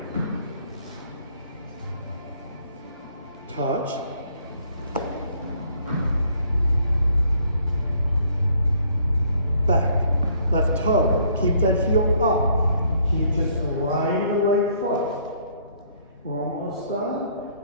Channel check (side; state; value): both; inverted; correlation -0.64